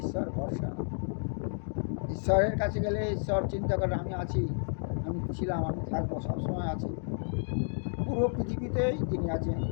ঈশ্বর ভরসা। ঈশ্বরের কাছে গেলে ঈশ্বর চিন্তা করে আমি আছি, আমি ছিলাম, আমি থাকবো, সবসময় আছি। পুরো পৃথিবীতেই তিনি আছেন,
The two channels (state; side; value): silent; right; 57 dB below the other